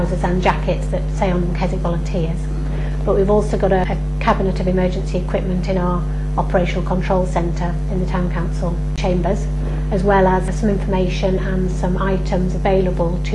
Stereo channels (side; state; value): both; identical; correlation 1.00